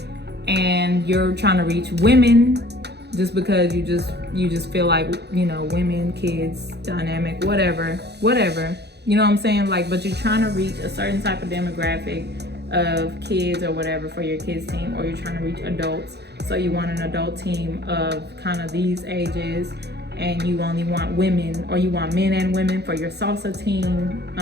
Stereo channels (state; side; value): late; left; 0.48 ms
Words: and you're trying to reach women just because you just feel like, women, kids, dynamic, whatever, you know what I'm saying? Like, but you're trying to reach a certain type of demographic of kids or whatever for your kids team, or you're trying to reach adults, so you want an adult team of kind of these ages, and you only want women, or you want men and women for your salsa team,